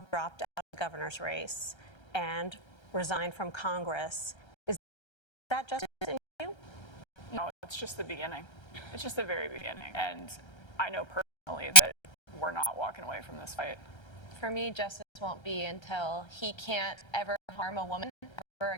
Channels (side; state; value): right; late; 1.3 ms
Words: dropped out of the governor's race and resigned from Congress, is that justice in you? No, it's just the beginning. It's just the very beginning. And I know personally that we're not walking away from this fight. For me, justice won't be until he can't ever harm a woman ever